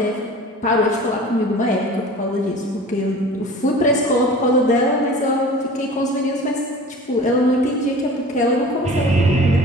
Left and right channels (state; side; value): normal; both; correlation 0.41